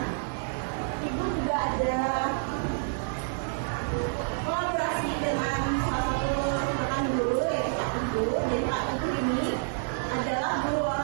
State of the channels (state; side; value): silent; left; 59 dB below the other